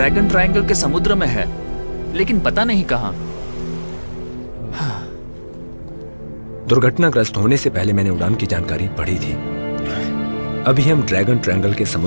ट्रायंगल के समुद्र में है, लेकिन पता नहीं कहाँ। दुर्घटनाग्रस्त होने से पहले मैंने उड़ान की जानकारी पढ़ी थी। अभी हम ड्रैगन ट्रायंगल के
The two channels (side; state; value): both; inverted; correlation -1.00